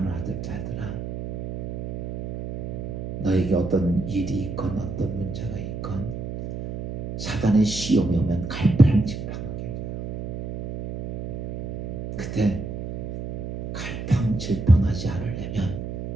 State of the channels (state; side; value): noise; right; hum, 6 dB below the sound